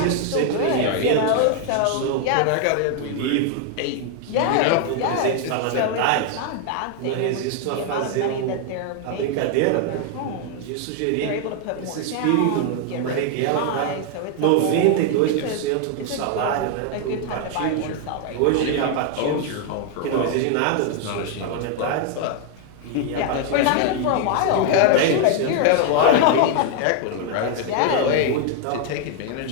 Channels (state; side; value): different; both; correlation 0.00